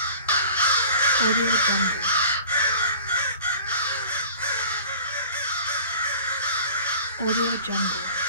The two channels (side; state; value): both; inverted; correlation -0.44